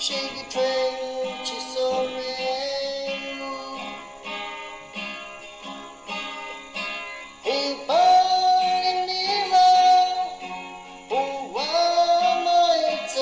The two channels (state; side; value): identical; both; correlation 1.00